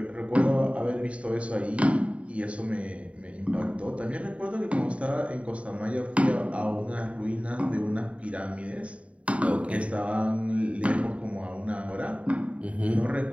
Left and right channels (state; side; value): late; left; 0.064 ms